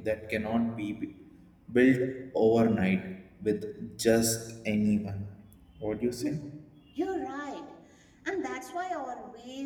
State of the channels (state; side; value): identical; both; correlation 1.00